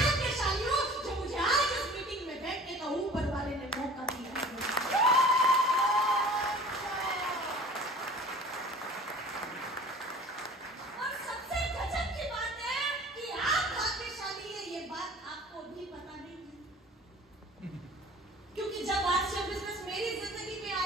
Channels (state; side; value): normal; both; correlation 0.46